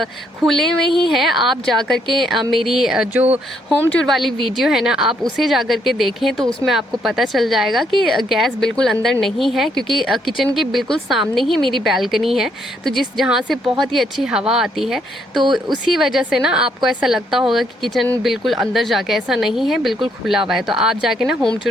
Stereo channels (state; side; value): normal; both; correlation 0.72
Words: खुले में ही है। आप जा कर के मेरी जो होम टूर वाली वीडियो है ना, आप उसे जा कर के देखें, तो उसमें आपको पता चल जाएगा कि गैस बिल्कुल अंदर नहीं है, क्योंकि किचन के बिल्कुल सामने ही मेरी बैल्कनी है, तो जहाँ से बहुत ही अच्छी हवा आती है। तो उसी वजह से ना आपको ऐसा लगता होगा कि किचन बिल्कुल अंदर जाके, ऐसा नहीं है, बिल्कुल खुला हुआ है। तो आप जाके ना होम